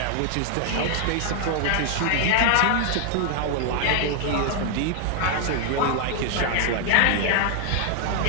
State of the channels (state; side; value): different; both; correlation 0.00